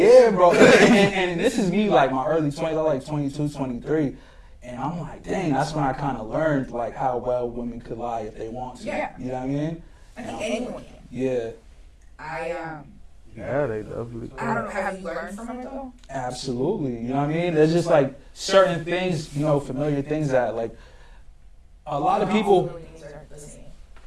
bro. And this is me like my early 20s. I like 22, 23. And I'm like, dang, that's when I kind of learned like how well women could lie if they want to. Yeah. You know what I mean? I think anyone can. Yeah. Yeah, they definitely I don't know. Have you learned from it though? Absolutely. You know what I mean? There's just like certain things, familiar things that like a lot of people.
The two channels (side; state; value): both; identical; correlation 1.00